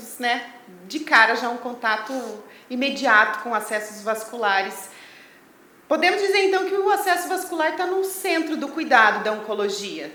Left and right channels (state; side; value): identical; both; correlation 1.00